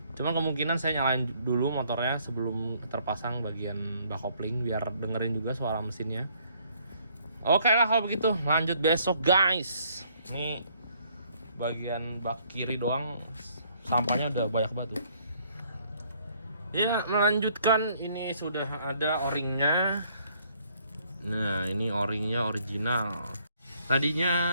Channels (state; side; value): inverted; both; correlation -0.65